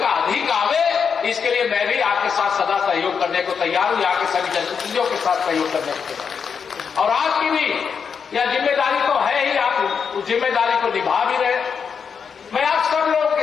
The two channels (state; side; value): quieter; right; 6.4 dB